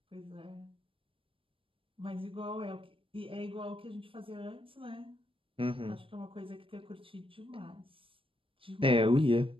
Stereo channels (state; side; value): late; left; 0.26 ms